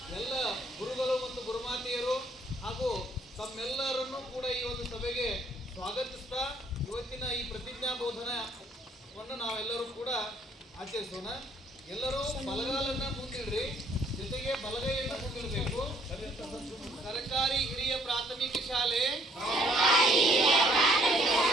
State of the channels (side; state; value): both; normal; correlation 0.64